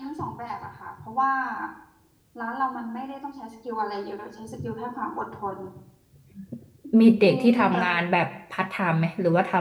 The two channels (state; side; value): identical; both; correlation 1.00